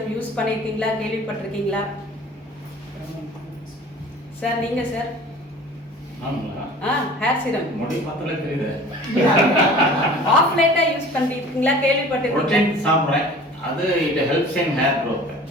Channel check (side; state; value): both; normal; correlation 0.44